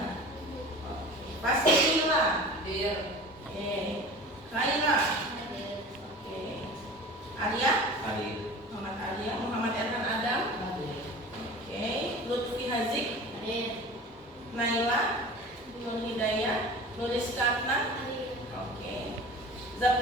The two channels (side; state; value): both; normal; correlation 0.38